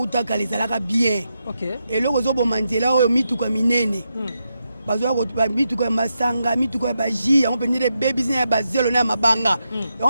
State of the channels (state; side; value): inverted; both; correlation -0.85